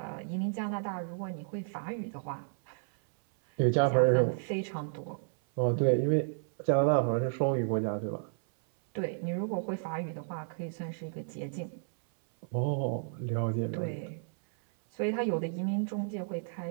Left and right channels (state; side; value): silent; left; 56 dB below the other